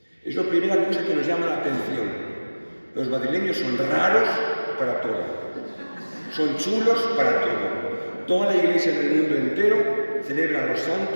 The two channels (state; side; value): inverted; both; correlation -1.00